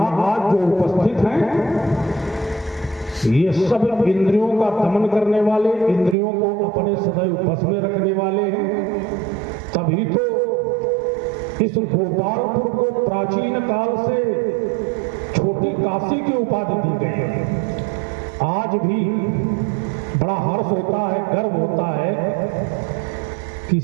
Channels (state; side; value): drops out; left; at 6.2 s